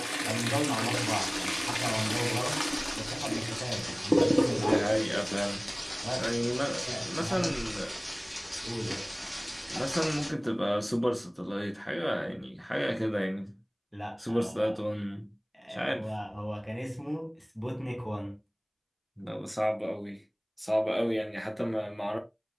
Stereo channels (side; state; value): both; identical; correlation 1.00